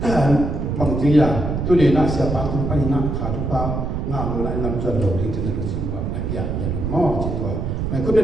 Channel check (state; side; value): noise; right; rumble, 2 dB below the sound